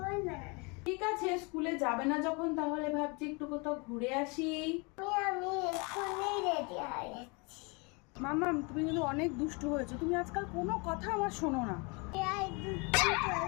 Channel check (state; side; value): quieter; right; 30.4 dB